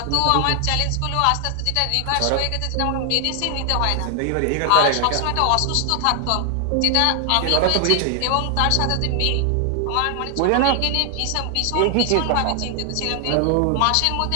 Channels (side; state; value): both; different; correlation 0.00